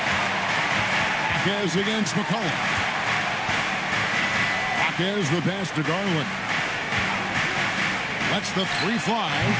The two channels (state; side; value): identical; both; correlation 1.00